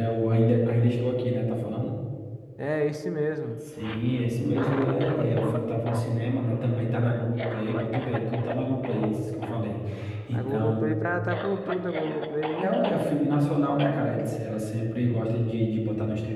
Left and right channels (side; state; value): both; identical; correlation 1.00